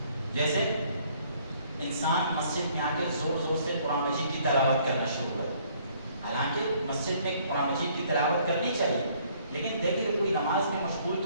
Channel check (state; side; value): inverted; both; correlation -0.62